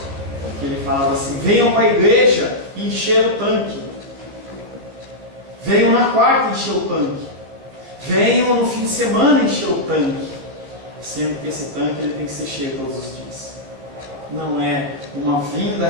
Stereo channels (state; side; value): late; left; 15 ms